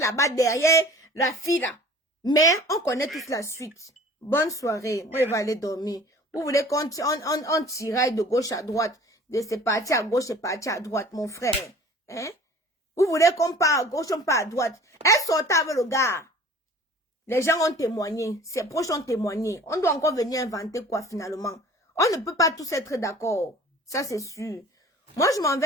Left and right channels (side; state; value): both; normal; correlation 0.47